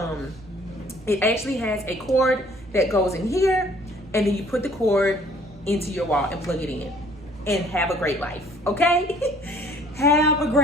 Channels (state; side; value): normal; both; correlation 0.57